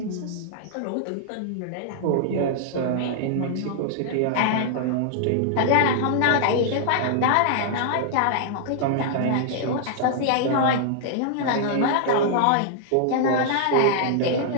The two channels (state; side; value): different; both; correlation -0.01